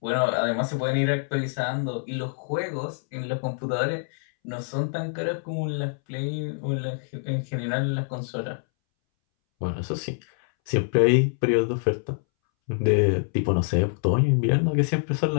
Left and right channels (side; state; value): right; silent; 61 dB below the other